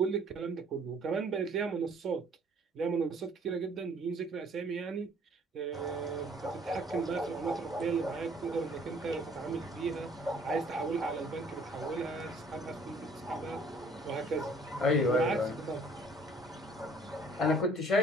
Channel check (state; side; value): normal; both; correlation 0.57